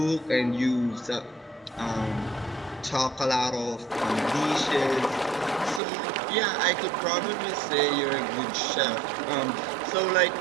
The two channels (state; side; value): drops out; left; at 5.8 s